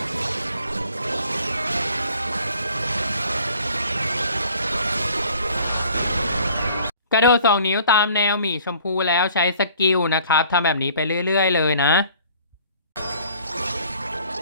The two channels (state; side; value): inverted; both; correlation -0.54